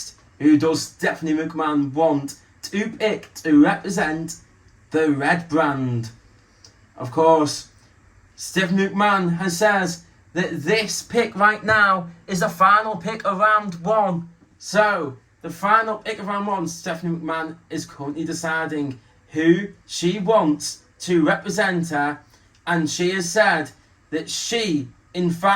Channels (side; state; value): both; identical; correlation 1.00